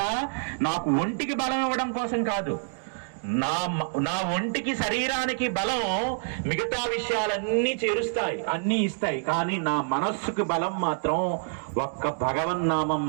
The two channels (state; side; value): silent; left; digital silence